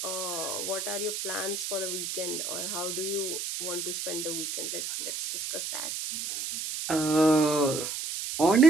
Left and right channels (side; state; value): right; noise; hiss, 4 dB below the sound